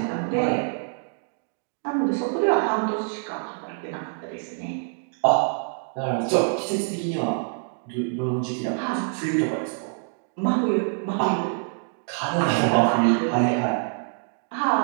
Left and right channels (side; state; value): left; silent; 61 dB below the other